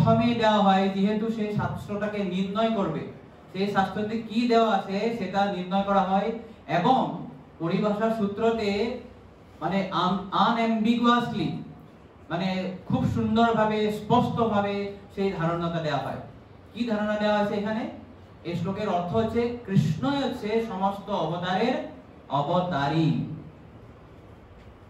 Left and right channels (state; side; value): identical; both; correlation 1.00